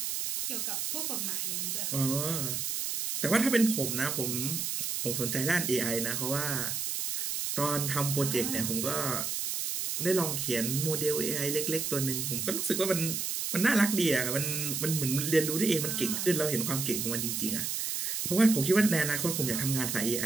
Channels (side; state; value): right; noise; hiss, 1 dB below the sound